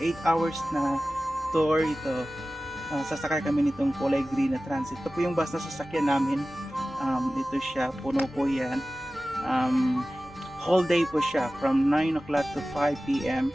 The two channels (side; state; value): both; normal; correlation 0.96